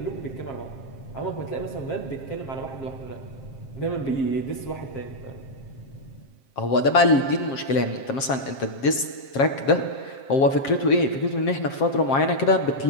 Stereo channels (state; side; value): late; right; 7.5 ms